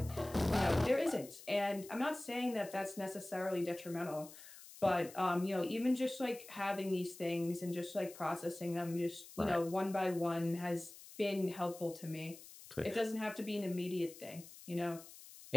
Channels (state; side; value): noise; left; hiss, 17 dB below the sound